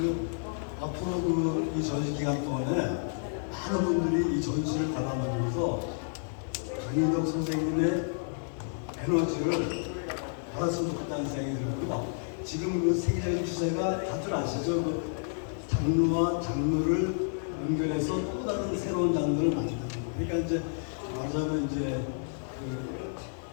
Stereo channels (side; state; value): right; silent; digital silence